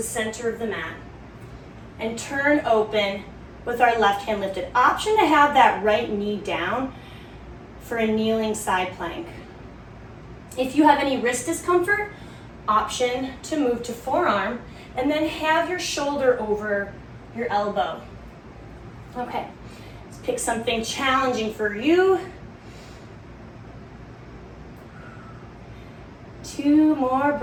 center of the mat and turn open with our left hand lifted. Option to have that right knee down for a kneeling side plank. If you have any wrist discomfort, option to move to forearm and then have your shoulder over your elbow. Okay, let's pick something challenging for you. 2 more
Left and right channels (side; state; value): both; identical; correlation 1.00